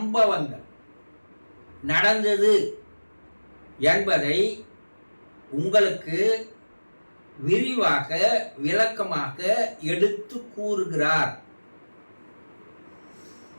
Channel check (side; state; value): both; inverted; correlation -1.00